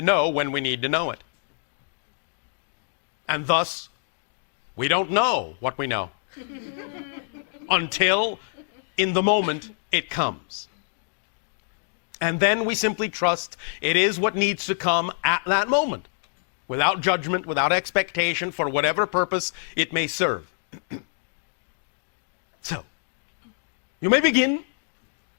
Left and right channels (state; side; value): silent; right; digital silence